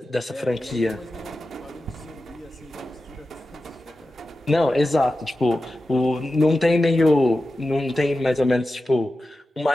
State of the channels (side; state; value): both; normal; correlation 0.93